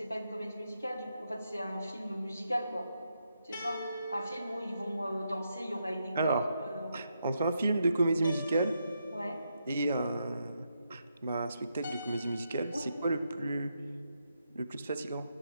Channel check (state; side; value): inverted; both; correlation -0.81